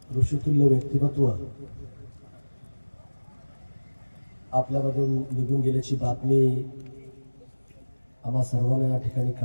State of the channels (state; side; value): inverted; both; correlation -1.00